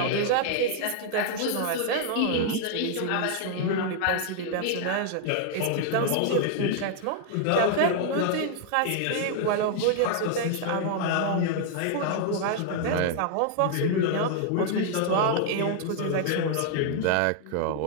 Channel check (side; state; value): both; different; correlation 0.00